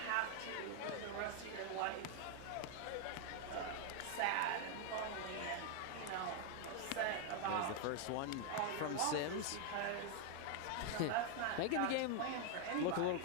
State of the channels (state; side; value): different; both; correlation 0.00